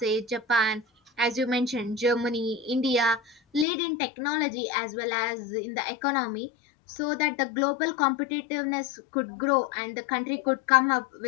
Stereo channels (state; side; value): drops out; right; at 3.7 s